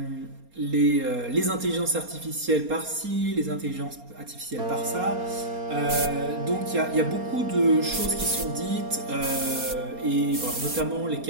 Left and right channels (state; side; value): late; left; 4.3 ms